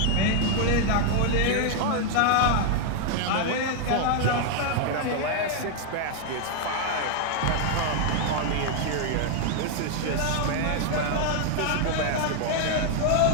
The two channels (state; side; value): different; both; correlation 0.00